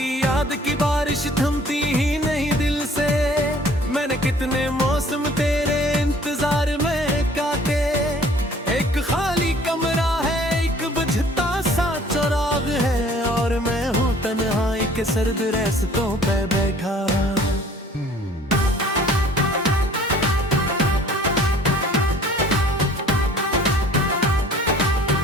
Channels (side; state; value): both; normal; correlation 0.53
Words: याद की बारिश थमती ही नहीं दिल से। मैंने कितने मौसम तेरे इंतजार में काटे, एक खाली कमरा है एक बुझता सा चराग है, और मैं हूँ तन्हाई के सर्द रास्तों पे बैठा।